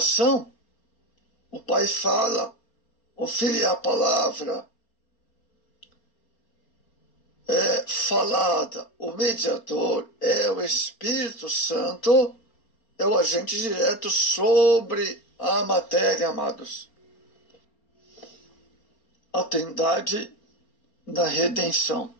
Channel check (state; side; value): late; right; 4.3 ms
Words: o Pai fala, o Filho é a palavra é falada, o mediador é o Espírito Santo, é o agente direto sobre a matéria, amados. A Trindade da redenção.